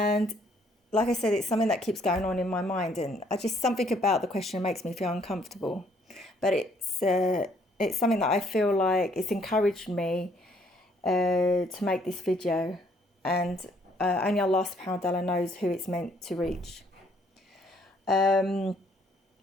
like I said, it's something that keeps going on in my mind, and something about the question makes me feel uncomfortable. But it's something that I feel like it's encouraged me to make this video, and only Allah subhanahu wa ta'ala knows who it's meant to reach. But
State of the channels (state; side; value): normal; both; correlation 0.65